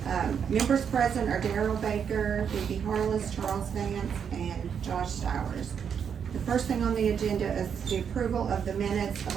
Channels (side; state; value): left; quieter; 7.4 dB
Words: Members present are Darrell Baker, Phoebe Harless, Charles Vance, and Josh Stowers. The first thing on the agenda is the approval of the minutes of